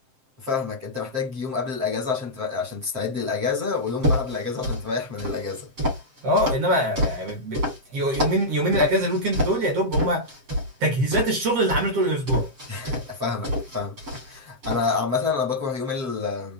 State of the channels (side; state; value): left; late; 7.6 ms